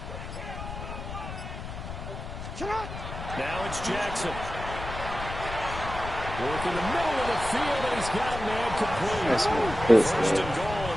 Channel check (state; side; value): noise; left; rumble, 8 dB below the sound